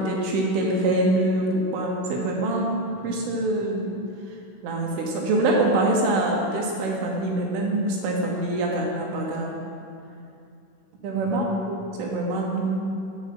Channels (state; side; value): late; left; 16 ms